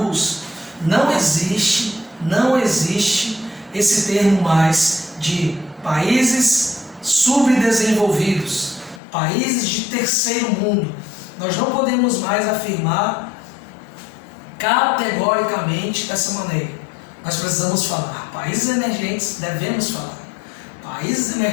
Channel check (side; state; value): right; drops out; at 9.0 s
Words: Não existe esse termo mais de países subdesenvolvidos, países de terceiro mundo. Nós não podemos mais afirmar categoricamente dessa maneira. Nós precisamos falar países emergentes, devemos falar países